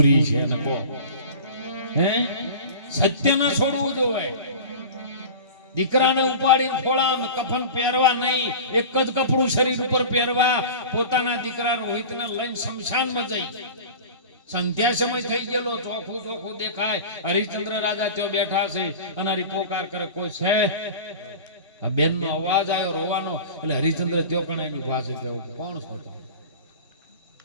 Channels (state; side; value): inverted; both; correlation -0.35